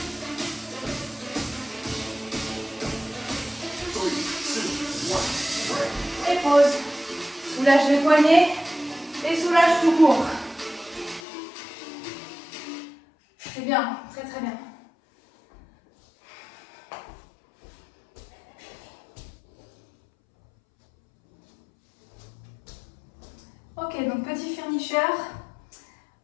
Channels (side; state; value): right; drops out; at 11.2 s